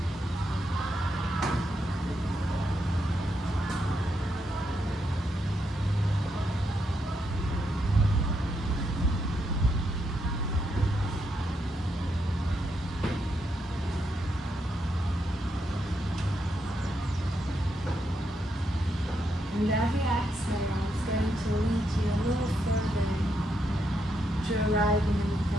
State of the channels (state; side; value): normal; both; correlation 0.80